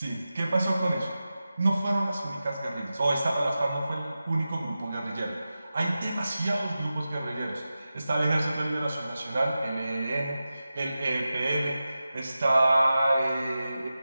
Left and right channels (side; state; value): both; inverted; correlation -0.93